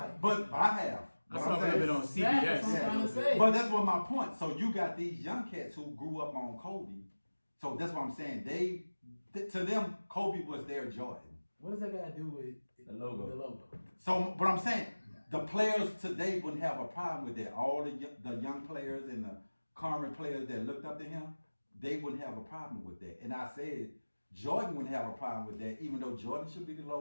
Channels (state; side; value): inverted; both; correlation -1.00